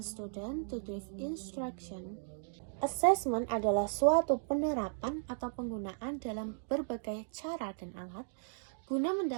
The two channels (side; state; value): left; silent; digital silence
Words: to give instruction. Assessment adalah suatu penerapan atau penggunaan dalam berbagai cara dan alat guna